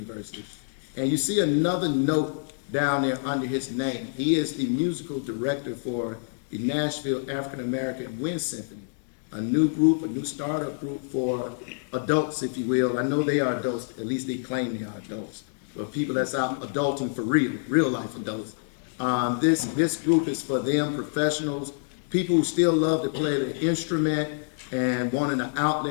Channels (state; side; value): silent; right; digital silence